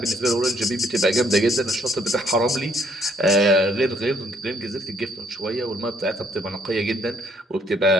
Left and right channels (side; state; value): both; normal; correlation 0.67